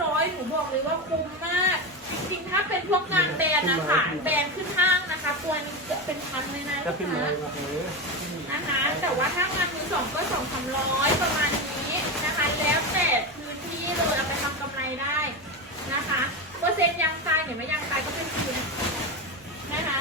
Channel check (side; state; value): both; normal; correlation 0.17